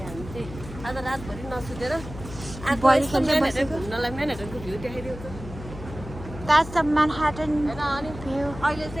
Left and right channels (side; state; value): left; noise; hum, 13 dB below the sound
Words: हामी चाहिँ आज रातभरि नसुतेर घुम्नलाई म्यानहट्टनको भ्यू देखाइदियो त. That's the Manhattan हैन. अनि view. अहिले